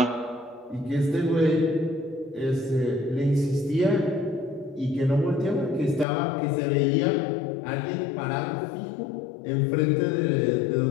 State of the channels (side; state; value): right; drops out; at 6.1 s